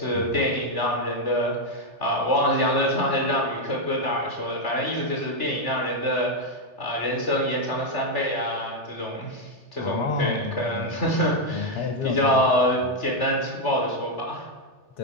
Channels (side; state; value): right; late; 3.4 ms